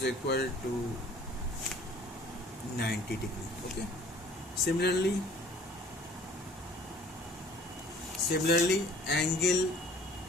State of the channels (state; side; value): normal; both; correlation 0.53